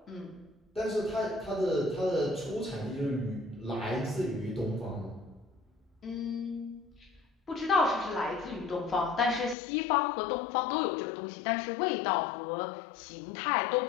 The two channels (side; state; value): right; drops out; at 9.6 s